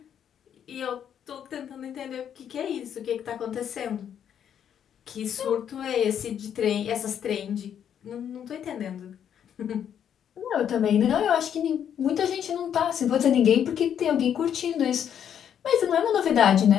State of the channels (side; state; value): right; quieter; 9.0 dB